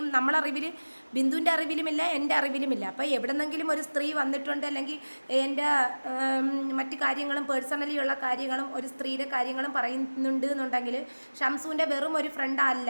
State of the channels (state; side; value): inverted; both; correlation -1.00